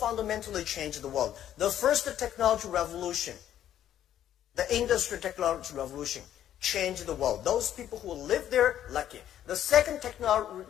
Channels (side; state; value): right; quieter; 11.1 dB